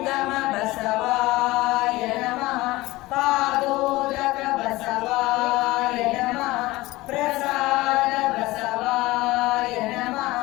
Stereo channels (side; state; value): right; quieter; 19.5 dB